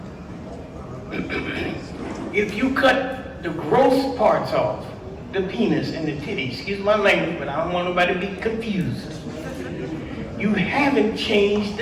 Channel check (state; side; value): identical; both; correlation 1.00